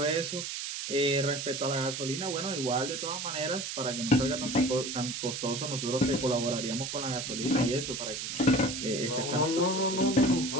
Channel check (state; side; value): noise; right; hiss, 5 dB below the sound